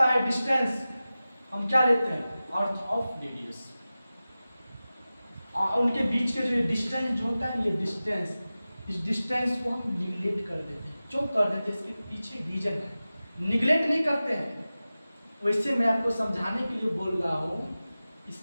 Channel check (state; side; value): inverted; both; correlation -0.96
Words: है, डिस्टेंस हम क्या लेते हैं? Earth of radius. उनके बीच के जो डिस्टेंस जो होता है, ये डिस्टेंस, इस डिस्टेंस को हम निगलेक्ट कर देते हैं। क्यों कर देते हैं? इसके पीछे रीजन है। निगलेक्ट नहीं करते हैं, वैसे मैं आपको समझाने के लिए बोल रहा हूँ।